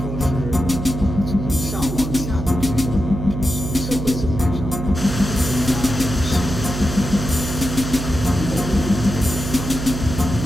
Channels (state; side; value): noise; right; hum, 5 dB below the sound